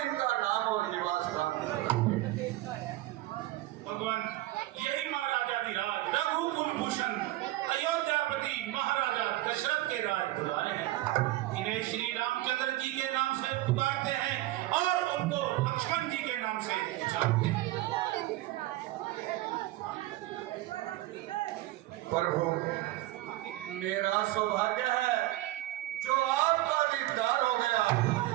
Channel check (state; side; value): quieter; left; 17.1 dB